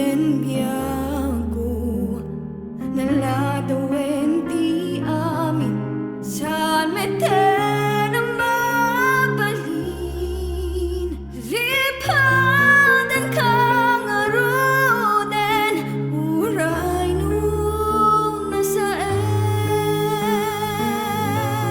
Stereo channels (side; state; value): both; identical; correlation 1.00